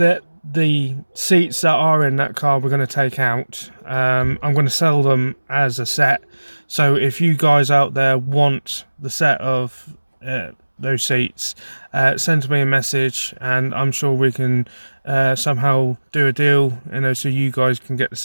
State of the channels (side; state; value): both; inverted; correlation -1.00